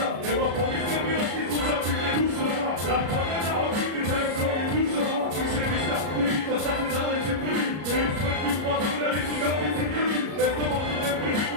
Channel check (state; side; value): late; left; 33 ms